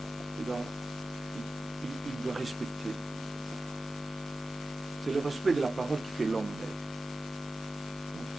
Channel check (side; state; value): both; normal; correlation 0.94